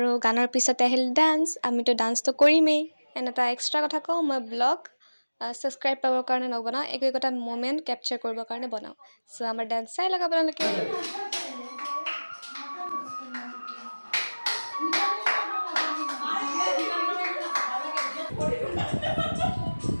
গানৰ পিছতে আহিল ডান্স। আমিতো ডান্সটো কৰিমেই। এনে এটা এক্সট্ৰা কথা কওঁ, মই ব্লগ ছাবস্ক্ৰাইব পাবৰ কাৰণে নবনাওঁ, একো একোটা মমেণ্ট কেপচাৰ কৰিবৰ কাৰণে বনাওঁ। চ' আমাৰ ডান্স চাই লওক আপোনালোকে।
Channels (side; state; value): both; inverted; correlation -1.00